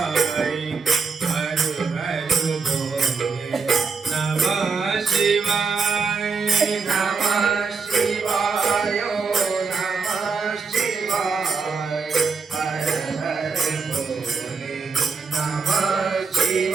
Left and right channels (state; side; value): quieter; left; 5.0 dB